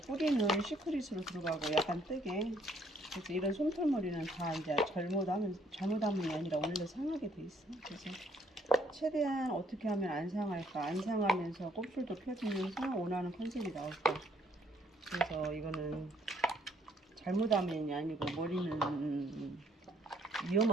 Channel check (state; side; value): normal; both; correlation 0.66